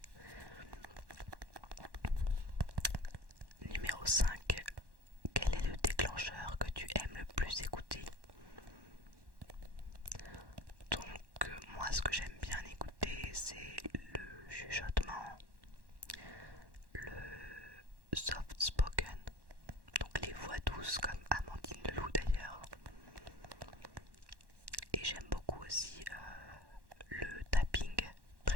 Numéro 5. Quel est le déclencheur que tu aimes le plus écouter? Donc moi ce que j'aime bien écouter c'est le chuchotement, le soft spoken, donc les voix douces comme Amandine Leloup d'ailleurs. Et j'aime beaucoup aussi le tapping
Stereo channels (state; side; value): late; left; 1.1 ms